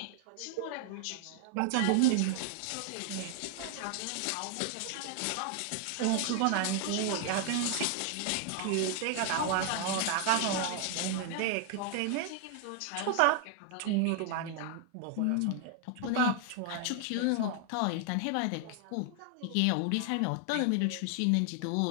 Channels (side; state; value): both; different; correlation 0.00